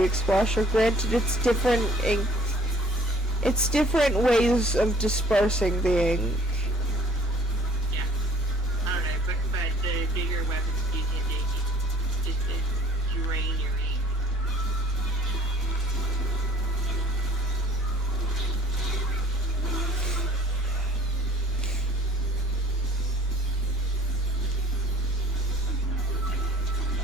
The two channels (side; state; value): right; noise; rumble, 20 dB below the sound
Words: Explosion. Granted, it's different ink. It's different ways of dispersing the ink. Yeah. I don't know, but the bigger weapons do tend to just drain your ink.